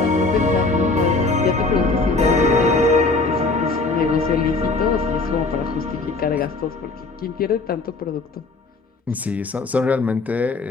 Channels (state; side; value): quieter; right; 3.7 dB